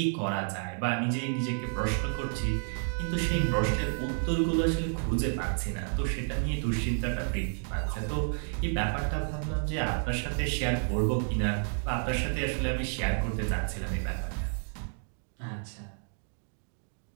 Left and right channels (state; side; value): silent; left; 57 dB below the other